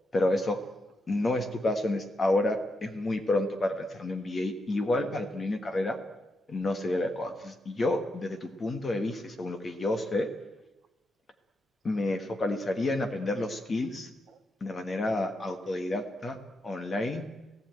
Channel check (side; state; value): both; normal; correlation 0.84